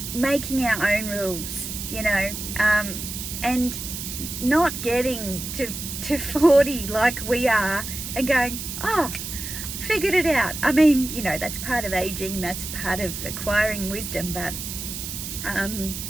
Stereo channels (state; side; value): noise; right; hiss, 7 dB below the sound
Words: making our own rules, you know, and not getting to 40 like we are and going, oh, figured it out. I mean, you know, that's part of aging, that's part of acquiring wisdom, but